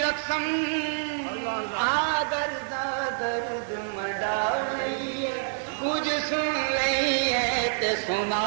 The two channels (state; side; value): silent; left; digital silence